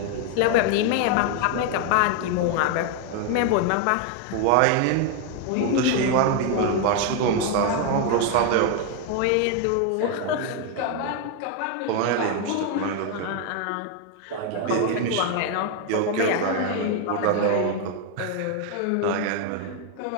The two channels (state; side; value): different; both; correlation 0.01